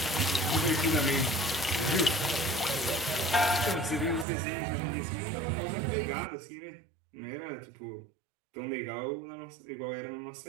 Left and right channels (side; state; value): left; drops out; at 4.2 s